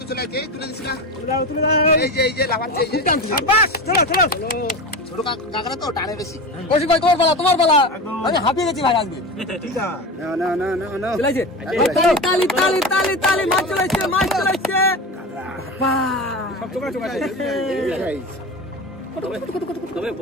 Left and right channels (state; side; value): normal; both; correlation 0.26